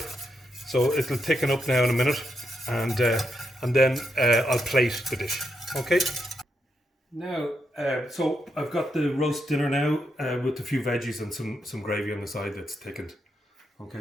So it'll thicken up now in a minute, and then I'll plate the dish. Okay. Now, so I've got the roast dinner now with a few veggies and some gravy on the side that's thickened.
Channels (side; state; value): both; normal; correlation 0.82